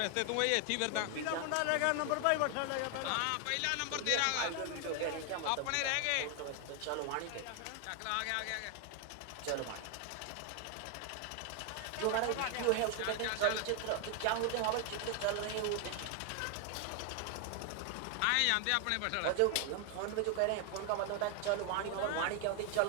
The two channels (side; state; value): both; different; correlation 0.00